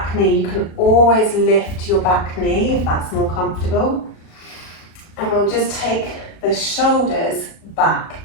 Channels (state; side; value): late; right; 37 ms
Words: knee, you can always lift your back knee if that's more comfortable. And we'll just take the shoulders back.